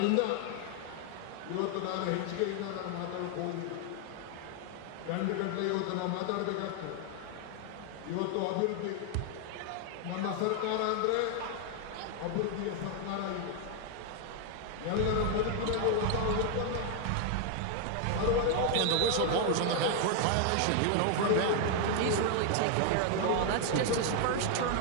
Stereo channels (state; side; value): different; both; correlation 0.00